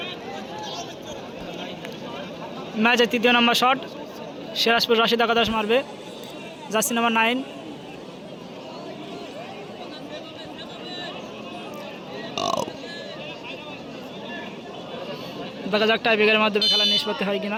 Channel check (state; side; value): identical; both; correlation 1.00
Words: ম্যাচের তৃতীয় নম্বর শট সিরাজপুর রাশিদ একাদশ মারবে জার্সি নাম্বার 9। দেখা যাক টাইব্রেকারের মাধ্যমে খেলা নিষ্পত্তি হয়